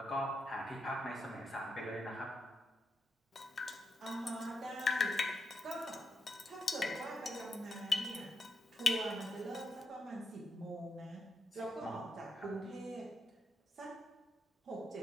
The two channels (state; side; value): normal; both; correlation 0.82